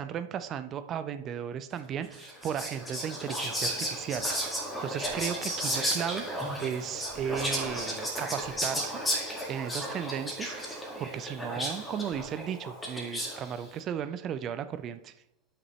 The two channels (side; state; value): left; quieter; 3.4 dB